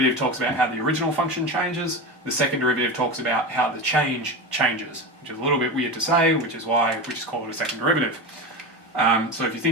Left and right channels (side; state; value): both; normal; correlation 0.23